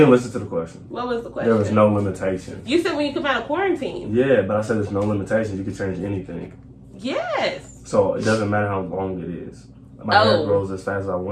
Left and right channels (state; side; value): identical; both; correlation 1.00